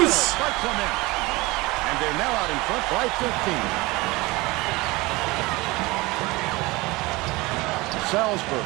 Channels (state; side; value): quieter; left; 22.4 dB